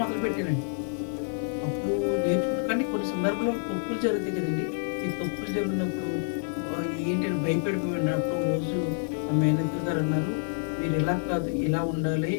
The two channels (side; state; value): right; silent; digital silence